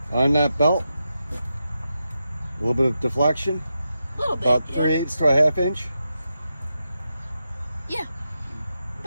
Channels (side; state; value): both; inverted; correlation -0.87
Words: on that belt. A little bit of deflection. A little bit. About yeah. 3/8 to a 1/2 inch. Yeah.